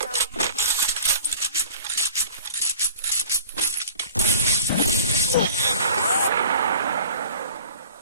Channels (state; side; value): inverted; both; correlation -0.44